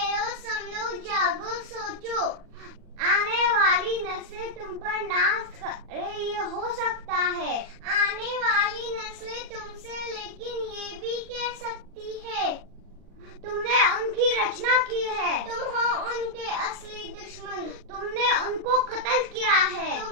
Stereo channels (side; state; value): left; late; 39 ms